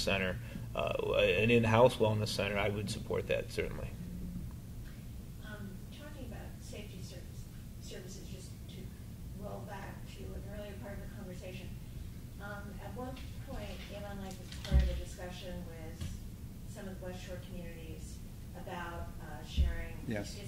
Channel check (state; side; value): identical; both; correlation 1.00